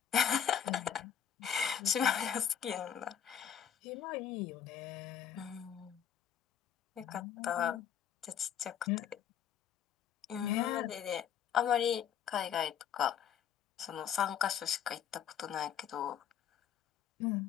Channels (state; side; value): quieter; right; 8.8 dB